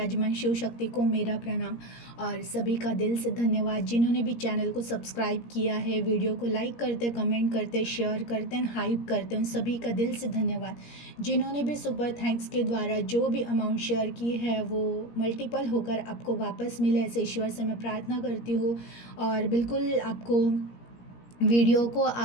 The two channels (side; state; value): right; late; 17 ms